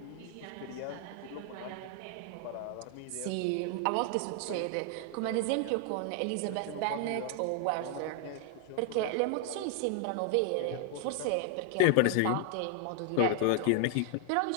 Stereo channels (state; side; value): different; both; correlation 0.00